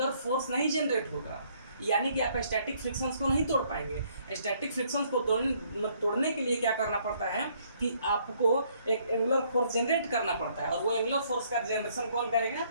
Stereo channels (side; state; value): both; inverted; correlation -0.66